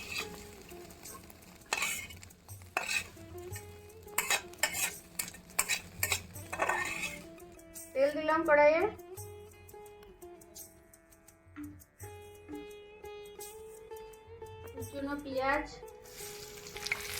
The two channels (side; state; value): both; identical; correlation 1.00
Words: তেল দিলাম কড়াইয়ে, কুচনো পেঁয়াজ,